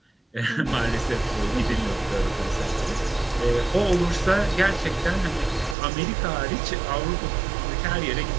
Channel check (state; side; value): drops out; left; at 5.8 s